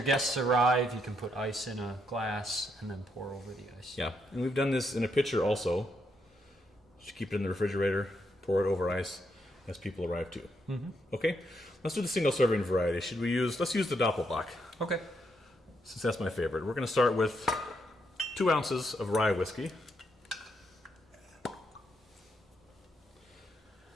guests arrive, you can put ice in a glass and then pour over the ice. Yeah, and we've done this in a pitcher also. Just keep it in the refrigerator, pour it over ice as people arrive too. Mm-hmm. Okay, let's do the single serving variety. Let's use the Doppelbock, Okay. since that's my favorite. We're going to start with 2 ounces of rye whiskey.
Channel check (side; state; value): both; normal; correlation 0.78